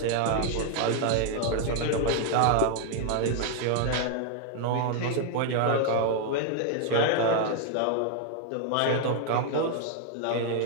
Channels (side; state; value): both; different; correlation 0.00